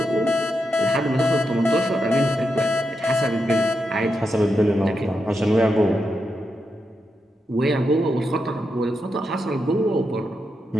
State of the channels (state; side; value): normal; both; correlation 0.85